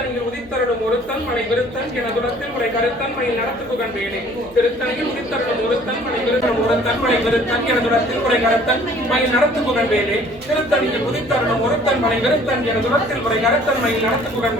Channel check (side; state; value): right; noise; hum, 24 dB below the sound